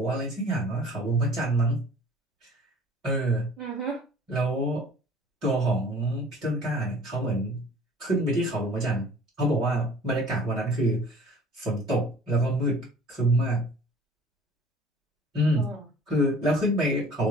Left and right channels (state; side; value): normal; both; correlation 0.48